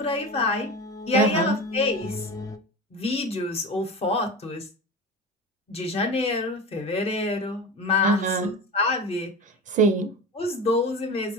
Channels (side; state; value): both; normal; correlation 0.29